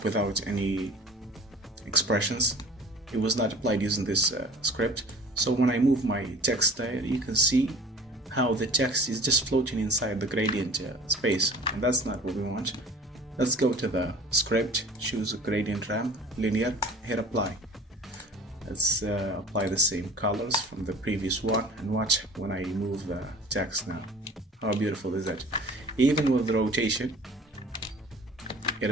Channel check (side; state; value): both; normal; correlation 0.45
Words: without any expressions. It was not applied using this script. So when I move my text there, you can see how the text is just floating inside the gradient space, and that's not what we want. Let's go to the script, choose a gradient ramp, linear, hit apply. Let's apply the same colors from the previous one and watch when I move the text now. How beautiful is that? Even with the rotation, it